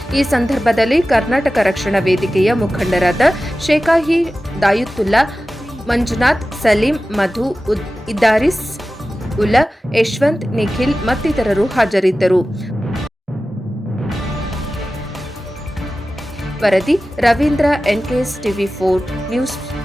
ಈ ಸಂದರ್ಭದಲ್ಲಿ ಕರ್ನಾಟಕ ರಕ್ಷಣಾ ವೇದಿಕೆಯ ಮುಖಂಡರಾದ ಶೇಖಾಹಿ ದಾಯುತ್ತುಲ್ಲಾ, ಮಂಜುನಾಥ್, ಸಲೀಂ, ಮಧು, ಇದ್ದಾರಿಸ್ ಉಲ್ಲಾ, ಯಶವಂತ್, ನಿಖಿಲ್ ಮತ್ತಿತರರು ಹಾಜರಿದ್ದರು. ವರದಿ ರವೀಂದ್ರ, ಎನ್ಕೆಎಸ್ ಟಿವಿ4 ನ್ಯೂಸ್,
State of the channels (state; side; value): normal; both; correlation 0.95